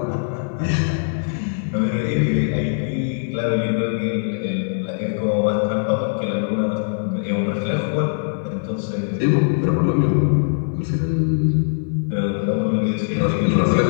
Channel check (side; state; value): right; silent; 59 dB below the other